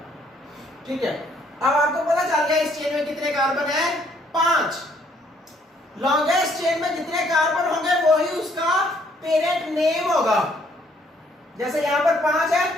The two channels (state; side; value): normal; both; correlation 0.66